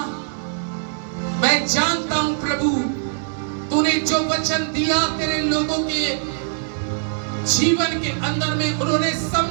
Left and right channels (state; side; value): silent; left; digital silence